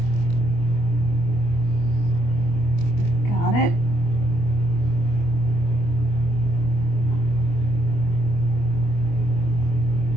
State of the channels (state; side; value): late; right; 24 ms